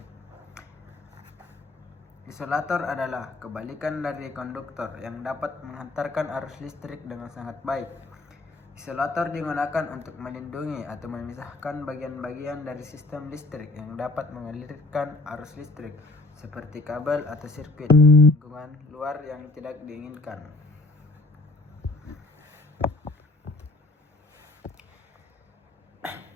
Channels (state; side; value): quieter; right; 3.0 dB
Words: Isolator adalah kebalikan dari konduktor yang dapat menghantarkan arus listrik dengan sangat baik. Isolator digunakan untuk melindungi atau memisahkan bagian-bagian dari sistem listrik yang dapat mengalirkan arus listrik, seperti kabel atau sirkuit lingkungan luar yang tidak diinginkan.